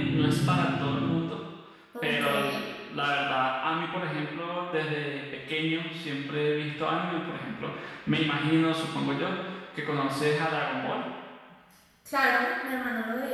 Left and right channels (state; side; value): identical; both; correlation 1.00